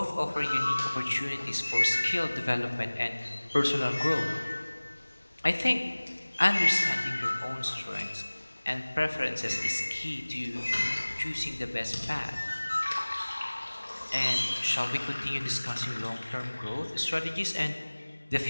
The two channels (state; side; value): inverted; both; correlation -1.00